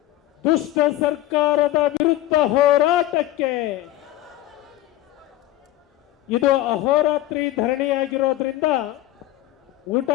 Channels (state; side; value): quieter; right; 15.0 dB